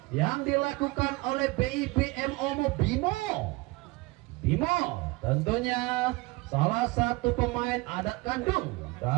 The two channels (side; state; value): left; quieter; 23.2 dB